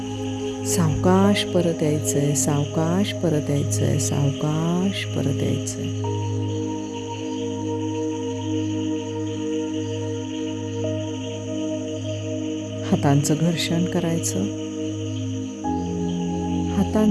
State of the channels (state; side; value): identical; both; correlation 1.00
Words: सावकाश परत यायचंय, सावकाश परत यायचंय, सावकाश परत यायचंय. हातांचं घर्षण करायचं.